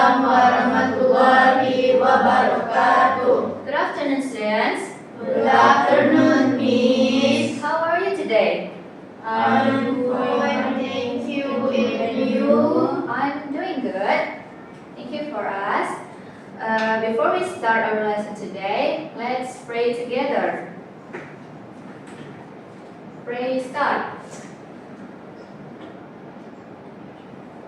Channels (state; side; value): identical; both; correlation 1.00